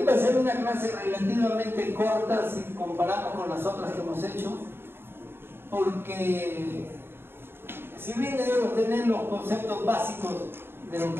va a ser una clase relativamente corta si comparamos con las otras que hemos hecho, porque si bien debemos tener los conceptos básicos de lo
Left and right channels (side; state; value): left; late; 0.11 ms